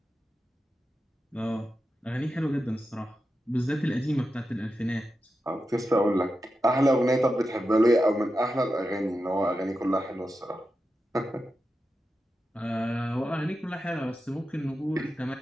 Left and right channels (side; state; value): both; normal; correlation 0.90